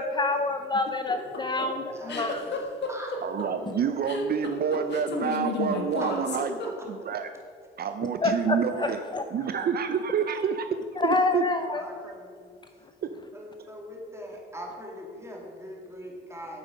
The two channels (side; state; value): both; normal; correlation 0.27